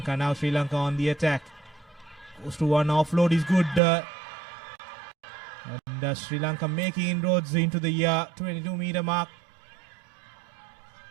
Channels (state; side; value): drops out; left; at 3.8 s